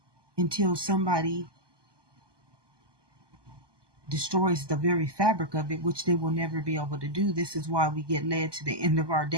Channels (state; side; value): late; left; 1.2 ms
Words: until somebody destroys the very fabric of it, which they will never be able to do. This is why we get led to the end of our